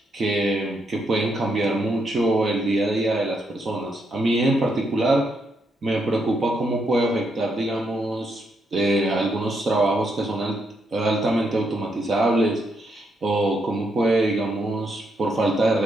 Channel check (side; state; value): both; normal; correlation 0.78